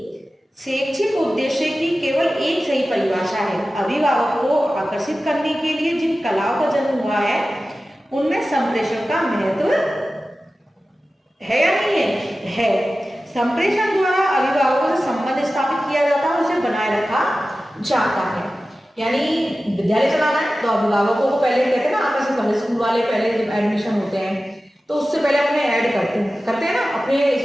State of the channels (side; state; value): both; normal; correlation 0.95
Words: शैक्षिक उद्देश्य की केवल एक सही परिभाषा है। अभिभावक को आकर्षित करने के लिए जिन कलाओं का जन्म हुआ है उनमें संप्रेषण का महत्व है या नहीं है? है। संप्रेषण द्वारा अभिभावकों से संबंध स्थापित किया जाता है, उसे बनाए रखा जाता है। यानी विद्यालय चलाना है तो अभिभावकों को पहले कहते हैं ना आकर्षित करना। स्कूल वाले पहले जब एडमिशन होते हैं तो उससे पहले अपने ऐड करते हैं ना, अपने